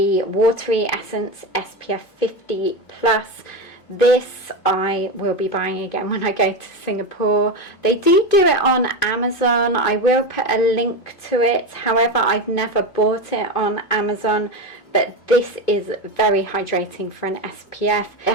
Watery Essence SPF 50 Plus. This I will be buying again when I go to Singapore. They do it on Amazon. I will put a link to it. However, I've never bought it on Amazon, but this is very hydrating for an SPF. It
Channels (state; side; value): late; right; 2.6 ms